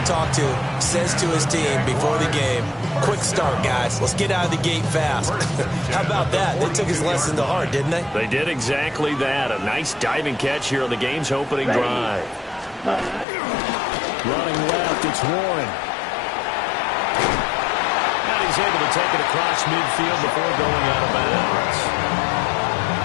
talk to says to his team before the game, quick start, guys. Let's get out of the gate fast. How about that? They took his lesson to heart, didn't they? They did exactly that. A nice diving catch here on the game's opening drive. Running left, it's Warren. And he's able to take it across midfield before going out of bounds.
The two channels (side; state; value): right; drops out; at 13.2 s